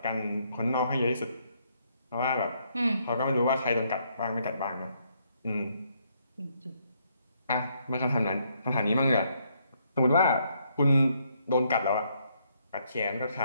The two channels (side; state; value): both; inverted; correlation -0.72